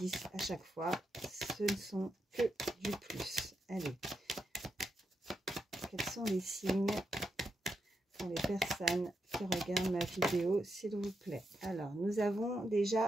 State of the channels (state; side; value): normal; both; correlation 0.84